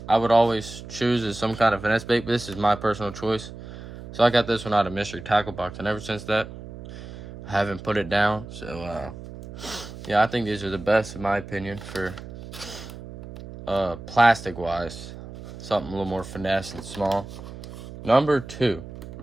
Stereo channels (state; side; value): noise; right; hum, 13 dB below the sound